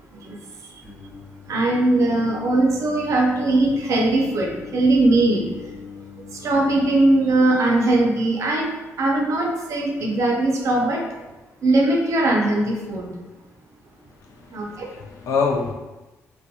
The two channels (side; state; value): both; normal; correlation 0.78